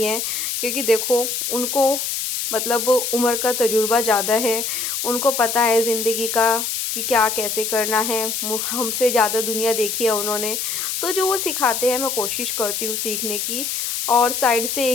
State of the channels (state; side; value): noise; left; hiss, 2 dB below the sound